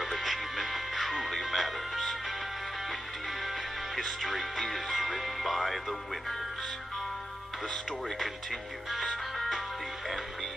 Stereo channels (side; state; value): both; normal; correlation 0.89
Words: achievement truly matters. Indeed, history is written by the winners. The story continues. The